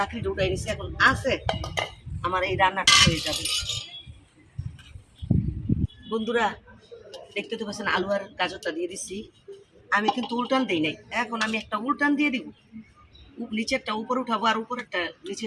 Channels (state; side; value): identical; both; correlation 1.00